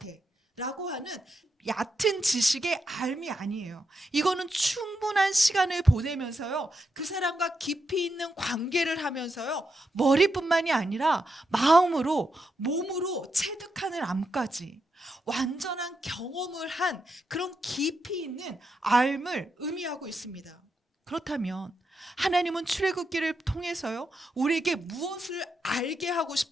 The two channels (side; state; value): both; normal; correlation 0.84